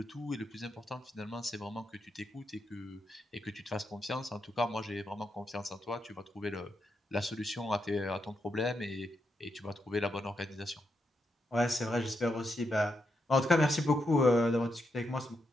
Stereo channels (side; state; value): both; normal; correlation 0.83